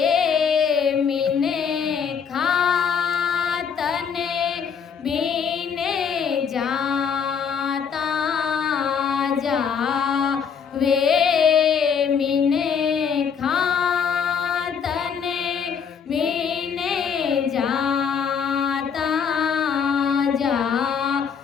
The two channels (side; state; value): right; quieter; 6.8 dB